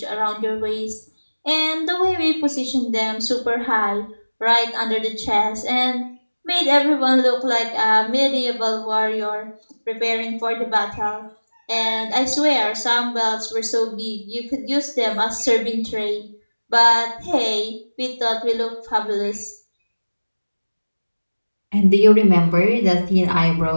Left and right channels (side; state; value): both; inverted; correlation -1.00